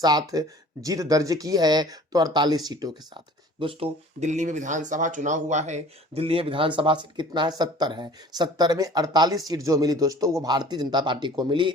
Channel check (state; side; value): normal; both; correlation 0.48